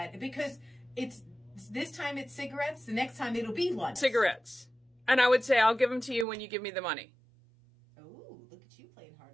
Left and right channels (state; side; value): drops out; left; at 6.2 s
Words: because this time it's cigarettes, the next time it'll be lunch. Cigarettes. And I would say, I'll give them to you when you give me the money. Oh, look at you playing